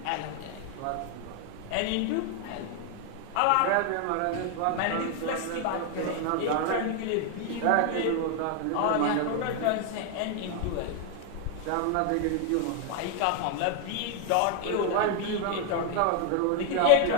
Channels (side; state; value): both; different; correlation 0.00